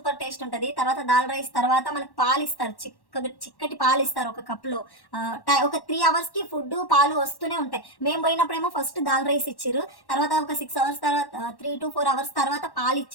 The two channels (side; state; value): right; late; 1.1 ms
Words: టేస్ట్ ఉంటుంది. తర్వాత దాల్ రైస్ తర్వాత మనకు పాలు ఇస్తారు, చిక్కటి పాలు ఇస్తారు ఒక కప్లో. ఒక 3 hours ఫుడ్ పాలు వస్తూనే ఉంటాయి. మేము పోయినప్పుడేమో ఫస్ట్ దాల్ రైస్ ఇచ్చిర్రు, తర్వాత ఒక 6 hours తర్వాత 3 to 4 hours తర్వాత పాలు